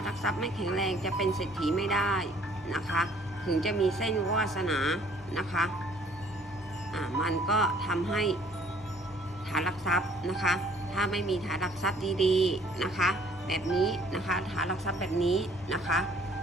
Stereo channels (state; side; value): normal; both; correlation 0.59